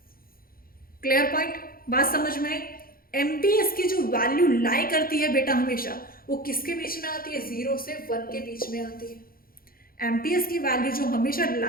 क्लियर पॉइंट, बात समझ में आई। एमपीएस की जो वैल्यू लाई करती है बेटा हमेशा, वो किसके बीच में आती है, 0 से 1 के बीच में आती है। एमपीएस की वैल्यू जो हमेशा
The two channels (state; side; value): late; right; 0.42 ms